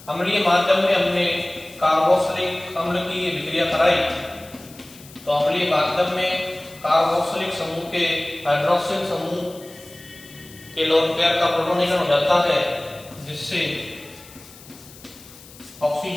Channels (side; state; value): left; noise; hiss, 21 dB below the sound